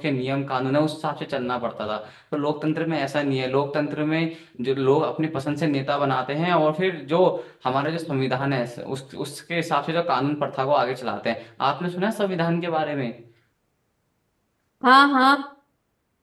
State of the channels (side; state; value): both; identical; correlation 1.00